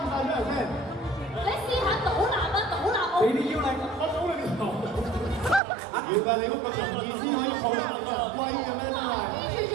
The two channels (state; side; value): drops out; left; at 5.6 s